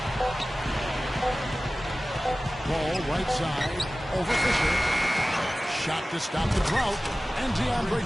Ball right side. Over Fisher. Shot to stop the drought. And DeAndre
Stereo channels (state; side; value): normal; both; correlation 0.97